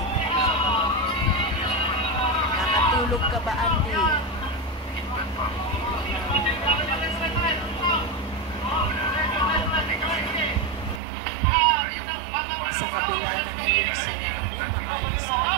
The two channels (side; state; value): left; drops out; at 11.0 s